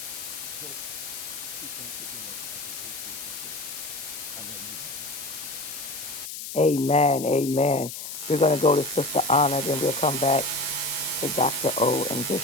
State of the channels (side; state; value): left; noise; hiss, 8 dB below the sound